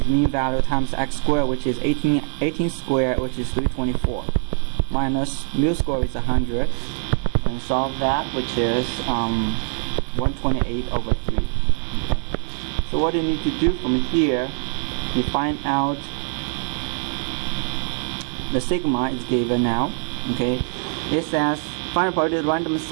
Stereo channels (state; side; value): silent; left; 59 dB below the other